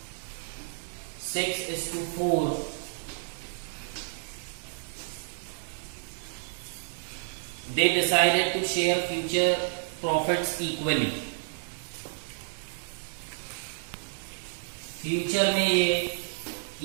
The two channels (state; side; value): silent; left; digital silence